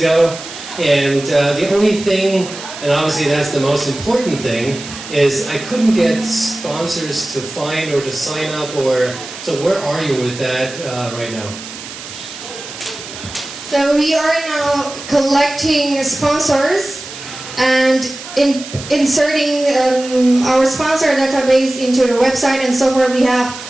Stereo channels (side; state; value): right; noise; hiss, 12 dB below the sound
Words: and the only thing, and obviously that's the most important thing, is I couldn't get sponsors to find or to sign up, or so where are you with that right now? So we are now collecting sponsors and inserting our sponsor database into the website, and so far we have